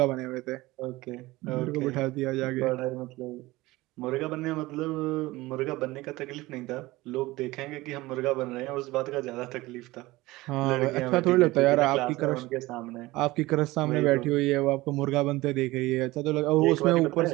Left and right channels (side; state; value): left; quieter; 19.6 dB